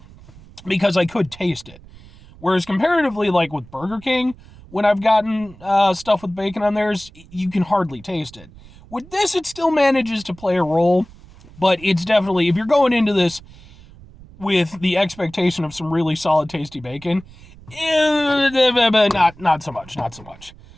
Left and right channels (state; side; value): noise; right; rumble, 22 dB below the sound